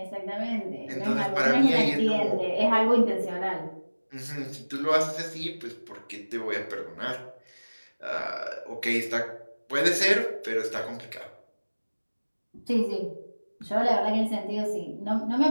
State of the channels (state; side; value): inverted; both; correlation -1.00